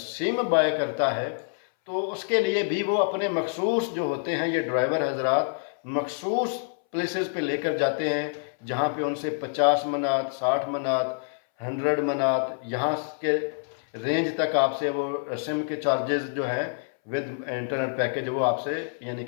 बाय करता है तो उसके लिए भी वो अपने मखसूस जो होते हैं ये ड्राइवर हजरात मखसूस प्लेसेस पे लेकर जाते हैं, जहाँ पे उनसे 50 मनात, 60 मनात, 100 मनात यहाँ के रेंज तक आपसे वो सिम के चार्जेस जो हैं विद इंटरनेट पैकेज वो आपसे यानी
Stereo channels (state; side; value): silent; right; 60 dB below the other